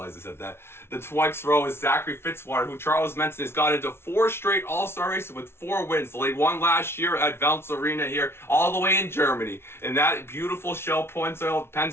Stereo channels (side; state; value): right; late; 0.12 ms